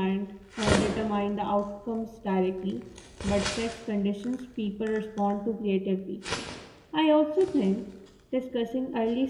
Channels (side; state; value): both; identical; correlation 1.00